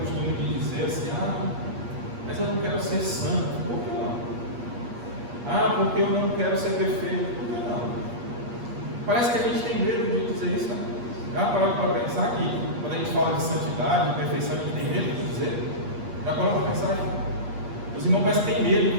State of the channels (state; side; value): late; left; 8.4 ms